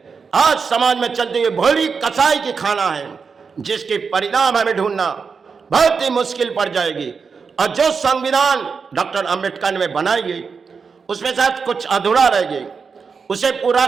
आज समाज में चलती हुई भोली कसाई की खाना है, जिसके परिणाम हमें ढूंढना बहुत ही मुश्किल पड़ जाएगी। और जो संविधान डॉक्टर अंबेडकर ने बनाई गई, उसमें शायद कुछ अधूरा रह गई, उसे पूरा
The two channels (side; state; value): left; quieter; 5.4 dB